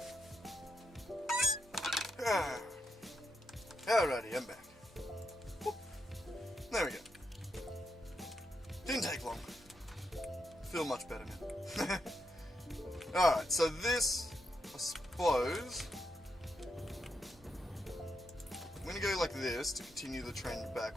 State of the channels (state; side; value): normal; both; correlation 0.82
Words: Alrighty, I'm back. Whoop. There we go. Didn't take long. Feel much better now. Alright, so this, I suppose, I'm going to go like this to continue the trend